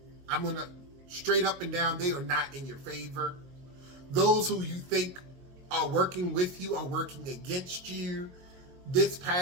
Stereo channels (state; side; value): late; left; 22 ms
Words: I'm going to straight up and down, they are not in your favor. Those who you think are working with you are working against you. This